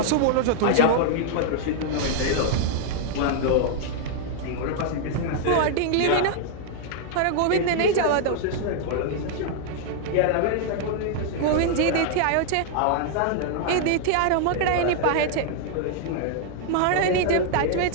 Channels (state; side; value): different; both; correlation 0.00